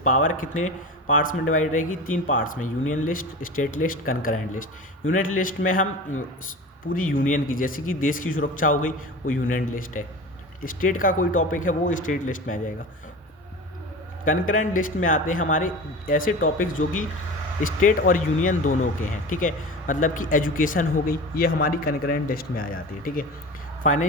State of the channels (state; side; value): normal; both; correlation 0.32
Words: कितने पार्ट्स में डिवाइड रहेगी, 3 पार्ट्स में, union list, state list, concurrent list. Union list में हम पूरी यूनियन की, जैसे कि देश की सुरक्षा हो गई, वो यूनियन लिस्ट है। स्टेट का कोई टॉपिक है वो स्टेट लिस्ट में आ जाएगा। कंकरेंट लिस्ट में आते हैं हमारे ऐसे टॉपिक्स जो कि स्टेट और यूनियन दोनों के हैं, ठीक है, मतलब कि एजुकेशन हो गई, ये हमारी कंकरेंट लिस्ट में आ जाती है, ठीक है।